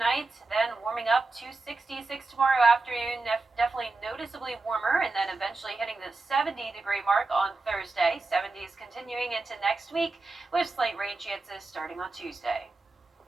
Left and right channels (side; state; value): left; quieter; 3.4 dB